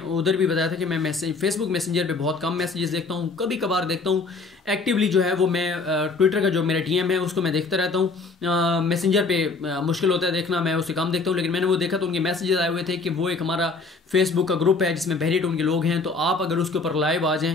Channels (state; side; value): quieter; right; 3.9 dB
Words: उधर भी बताया था कि मैं फेसबुक मैसेंजर पे बहुत कम मैसेजेस देखता हूँ, कभी कभार देखता हूँ। एक्टिवली जो है वो मैं ट्विटर का जो मेरा DM है उसको मैं देखता रहता हूँ। मैसेंजर पे मुश्किल होता है देखना, मैं उससे कम देखता हूँ। लेकिन मैंने वो देखा तो उनके मैसेजेस आए हुए थे कि वो एक हमारा फेसबुक का ग्रुप है जिसमें बहरिया टाउन के लोग हैं, तो आप अगर उसके ऊपर लाइव आ